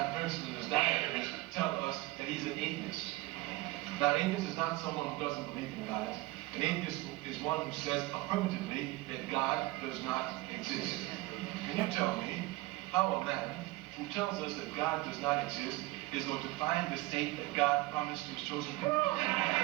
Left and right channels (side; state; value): left; quieter; 20.3 dB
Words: Herzl, and his diaries tell us that he's an atheist. Now, an atheist is not someone who doesn't believe in God. An atheist is one who says affirmatively that God does not exist. Can you tell me how a man who tells us that God does not exist is going to find the state that God promised to his chosen people?